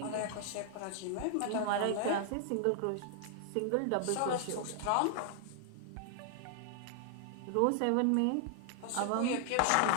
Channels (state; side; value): different; both; correlation 0.00